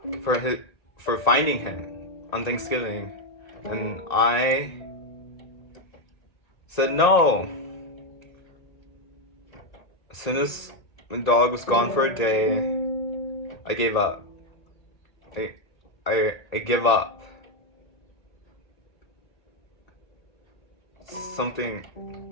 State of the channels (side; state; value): right; late; 1.8 ms